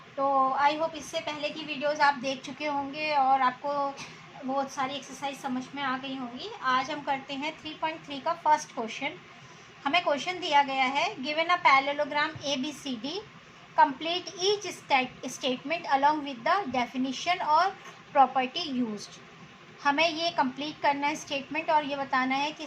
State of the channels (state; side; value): identical; both; correlation 1.00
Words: तो आई होप इससे पहले की वीडियोस आप देख चुके होंगे और आपको बहुत सारी एक्सरसाइज समझ में आ गई होंगी। आज हम करते हैं 3.3 का फर्स्ट क्वेश्चन। हमें क्वेश्चन दिया गया है, given a parallelogram ABCD, complete each statement along with the definition और प्रॉपर्टी यूज्ड। हमें ये कंप्लीट करना है स्टेटमेंट और ये बताना है कि